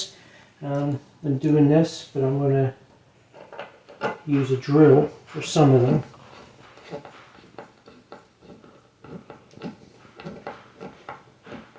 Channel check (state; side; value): identical; both; correlation 1.00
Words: than doing this, but I'm going to use a drill for some of them.